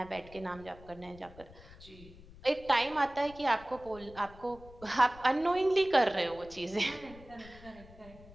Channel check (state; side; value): noise; left; rumble, 20 dB below the sound